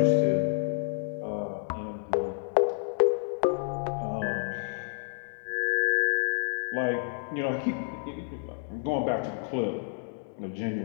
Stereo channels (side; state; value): right; silent; digital silence